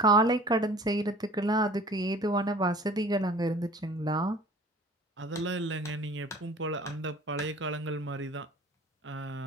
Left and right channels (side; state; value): both; normal; correlation 0.46